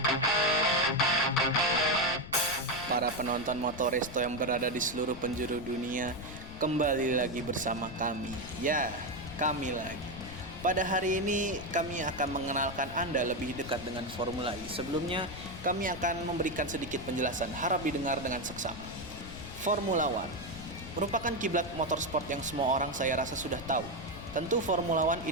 penonton Motoresto yang berada di seluruh penjuru dunia, kembali lagi bersama kami. Ya, kami lagi. Pada hari ini kami akan mengenalkan Anda lebih dekat dengan Formula E. Sebelumnya, kami akan memberikan sedikit penjelasan, harap didengar dengan seksama. Formula One merupakan kiblat motorsport yang semua orang saya rasa sudah tahu. Tentu Formula One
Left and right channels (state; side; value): noise; left; rumble, 13 dB below the sound